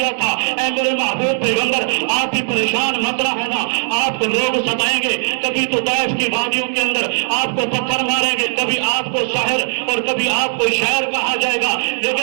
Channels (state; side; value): silent; left; digital silence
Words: تھا اے میرے محبوب پیغمبر آپ بھی پریشان مت رہنا آپ کو لوگ ستائیں گے کبھی تو طائف کی وادیوں کے اندر آپ کو پتھر ماریں گے کبھی آپ کو شاعر اور کبھی آپ کو شاعر کہا جائے گا